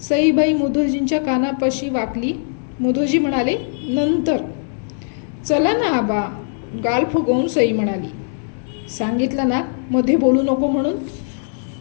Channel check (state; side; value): silent; right; digital silence